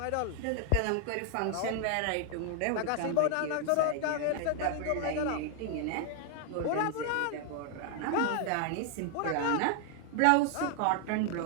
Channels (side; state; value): both; different; correlation 0.00